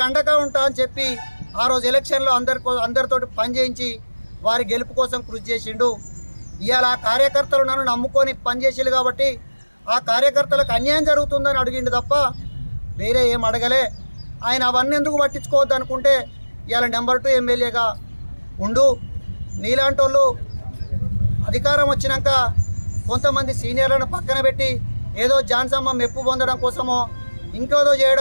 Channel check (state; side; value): inverted; both; correlation -1.00